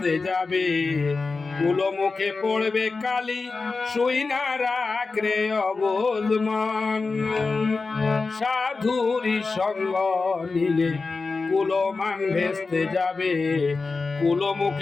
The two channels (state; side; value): quieter; right; 4.1 dB